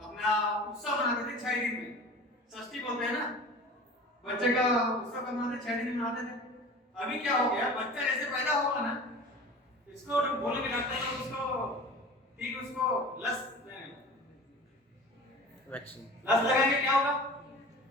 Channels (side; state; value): both; normal; correlation 0.39